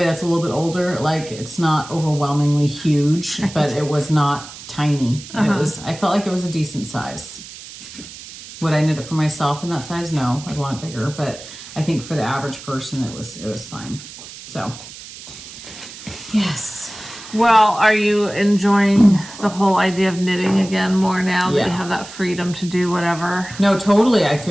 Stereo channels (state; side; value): noise; right; hiss, 15 dB below the sound